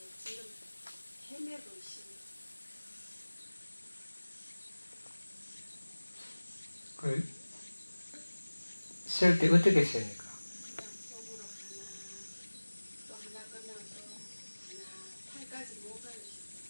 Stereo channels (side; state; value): both; inverted; correlation -1.00